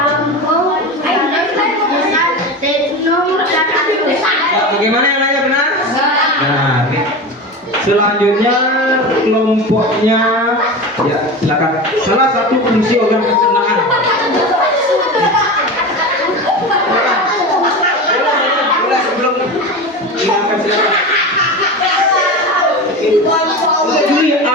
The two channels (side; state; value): both; normal; correlation 0.27